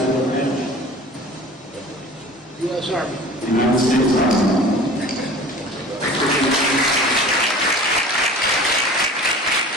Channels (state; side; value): normal; both; correlation 0.42